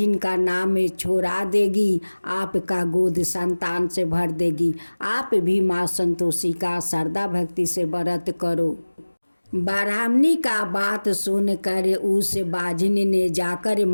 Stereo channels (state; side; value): inverted; both; correlation -1.00